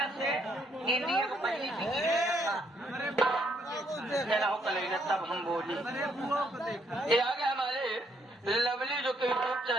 से इंडिया को पहली तब हम बोली ये आगे हमारे लवली जो कि यूट्यूब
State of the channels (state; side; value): normal; both; correlation 0.71